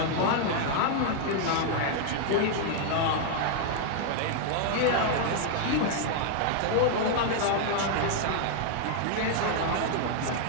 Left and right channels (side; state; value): both; different; correlation 0.00